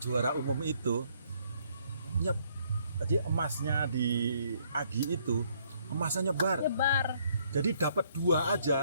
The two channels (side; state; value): both; inverted; correlation -0.68